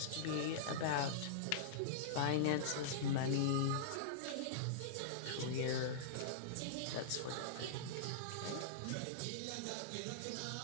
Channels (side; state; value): both; different; correlation -0.02